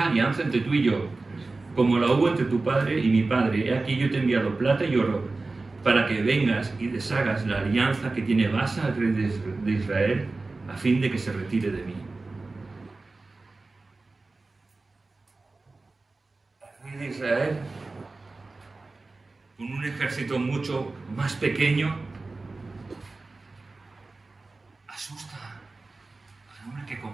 alianza entre tú y yo, como la hubo entre tu padre y mi padre. He aquí yo te he enviado plata y oro, para que vengas y deshagas la alianza que tiene Baasa, el rey de Israel, a fin de que se retire de mí. El rey de Israel, con un ejército mucho más pequeño, asusta al hombre que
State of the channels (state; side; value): quieter; left; 3.5 dB